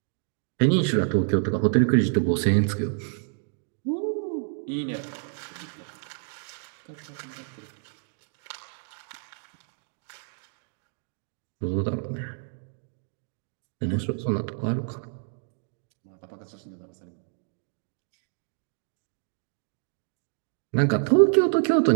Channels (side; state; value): left; silent; 59 dB below the other